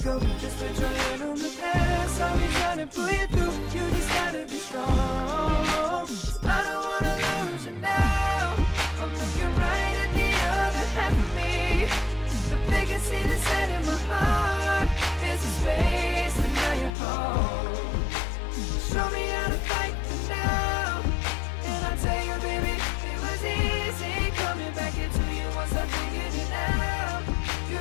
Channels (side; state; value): right; drops out; at 16.9 s